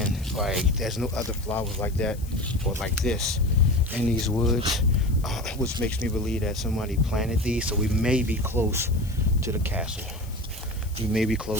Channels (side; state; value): left; noise; hiss, 20 dB below the sound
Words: like, there's no other flowers like that or like this in these woods, which makes me believe that somebody planted these. So we may be close to the castle. We may be